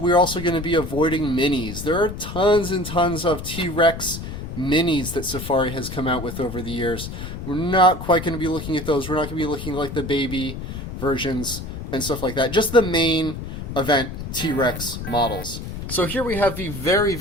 also going to be avoiding minis. There are tons and tons of T-Rex minis that Safari has come out with over the years. We're not quite going to be looking at those. We're not going to be looking at like the baby versions and stuff like that. Just the main event T-Rex models. So here we have the very,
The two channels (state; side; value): noise; left; rumble, 8 dB below the sound